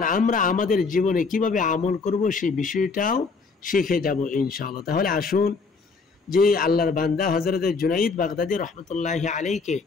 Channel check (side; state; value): right; quieter; 4.5 dB